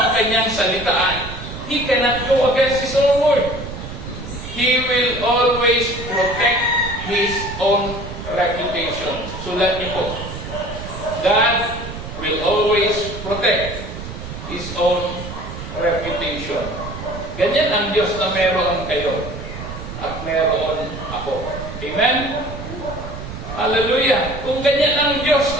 kanyang salitaan. He cannot go against His own word. He will always protect His own reputation. Sulat niyo po. God will always protect His own reputation. Ganyan ang Diyos na meron kayo at meron ako. Amen? Hallelujah! Kung ganyan ang Diyos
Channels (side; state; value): right; noise; rumble, 10 dB below the sound